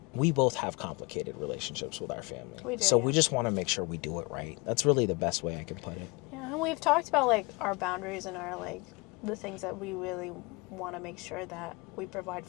we both have complicated relationships with our family. We do, so we just want to make sure we do it right. That's really the best way I can put it. Yeah, and we've talked about like our boundaries and our like the things that we really want to make sure that we provide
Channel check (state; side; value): quieter; right; 27.6 dB